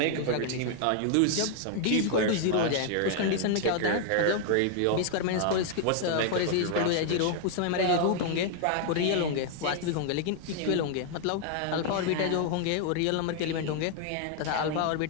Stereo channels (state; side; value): different; both; correlation 0.00